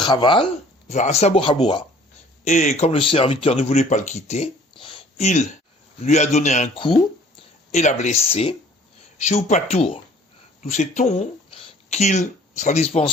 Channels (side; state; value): both; normal; correlation 0.53